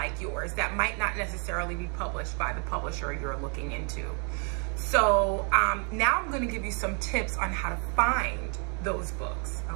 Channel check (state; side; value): quieter; left; 37.8 dB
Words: yours that might not necessarily be published by the publisher you're looking into. So now I'm going to give you some tips on how to find those books,